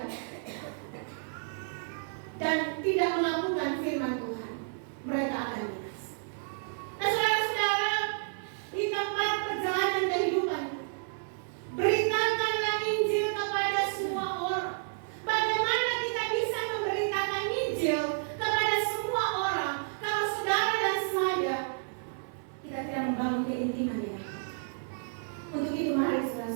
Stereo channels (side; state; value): left; silent; 57 dB below the other